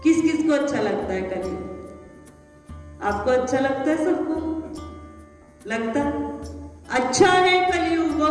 किस किस को अच्छा लगता है कलयुग? आपको अच्छा लगता है? सबको लगता है अच्छा है कलयुग,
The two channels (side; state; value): both; identical; correlation 1.00